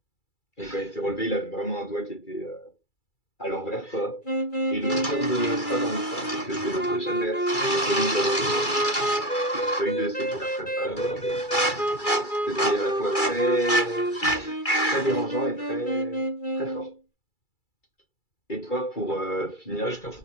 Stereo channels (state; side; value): late; right; 2.3 ms